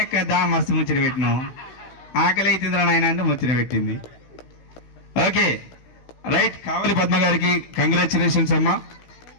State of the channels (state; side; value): late; right; 16 ms